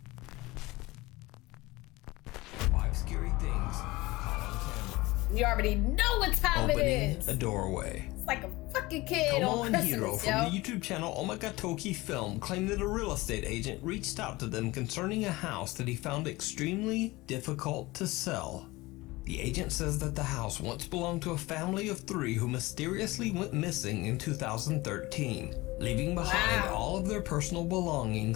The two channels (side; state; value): right; quieter; 20.8 dB